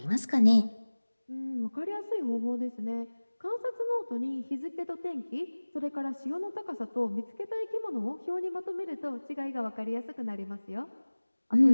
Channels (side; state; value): both; inverted; correlation -1.00